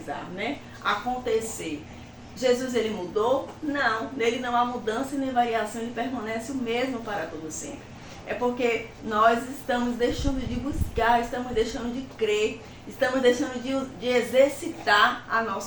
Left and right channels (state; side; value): identical; both; correlation 1.00